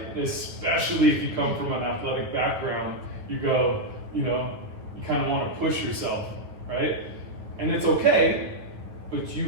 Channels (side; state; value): left; late; 9.7 ms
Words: Especially if you come from an athletic background, you go, you kind of want to push yourself, right? And it's okay, but